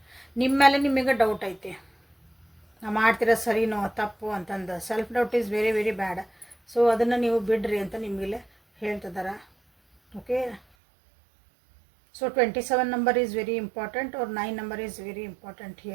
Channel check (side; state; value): left; drops out; at 10.6 s